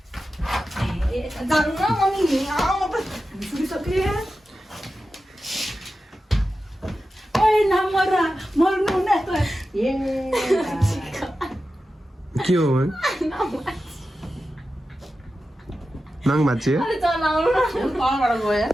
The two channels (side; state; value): both; normal; correlation 0.92